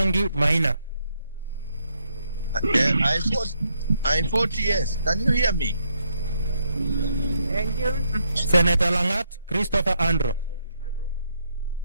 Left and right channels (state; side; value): inverted; both; correlation -0.75